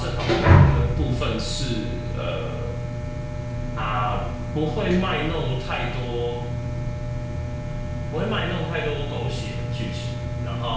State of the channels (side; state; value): both; identical; correlation 1.00